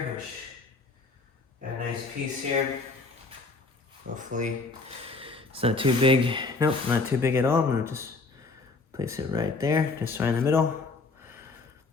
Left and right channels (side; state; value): right; quieter; 3.8 dB